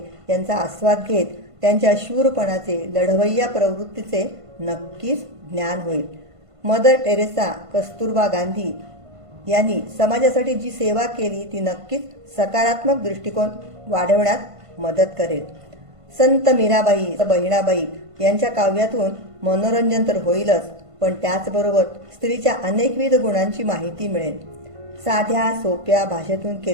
यांचा आस्वाद घेत त्यांच्या शूरपणाचे, लढवय्या प्रवृत्तीचे नक्कीच ज्ञान होईल. मदर टेरेसा, कस्तुरबा गांधी यांनी समाजासाठी जी सेवा केली ती नक्कीच सकारात्मक दृष्टिकोन वाढवण्यात मदत करेल. संत मीराबाई, बहिणाबाई यांच्या काव्यातून मनोरंजन तर होईलच, पण त्याचबरोबर स्त्रीच्या अनेकविध गुणांची माहिती मिळेल. साध्या सोप्या भाषेतून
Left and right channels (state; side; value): late; left; 1.5 ms